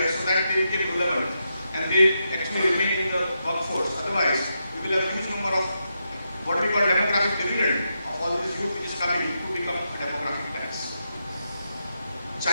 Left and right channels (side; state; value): both; inverted; correlation -0.84